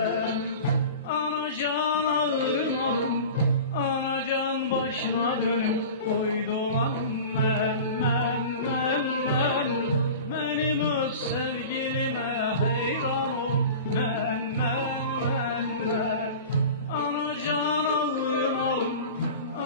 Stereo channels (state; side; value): inverted; both; correlation -0.35